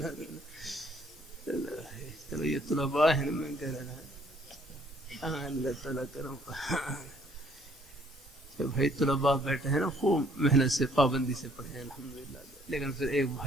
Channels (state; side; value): normal; both; correlation 0.63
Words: چلو یہ طلباء ہیں، میں کہہ رہا ہوں اللہ تعالیٰ کرم. بھائی طلباء بیٹھے ہیں نا، خوب محنت سے پابندی سے پڑھے ہیں الحمدللہ. لیکن پھر ایک